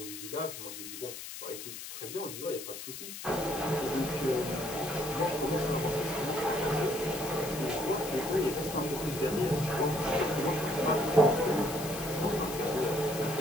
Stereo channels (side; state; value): left; noise; hiss, 9 dB below the sound